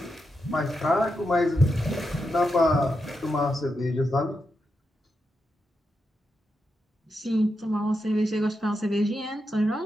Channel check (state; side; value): normal; both; correlation 0.86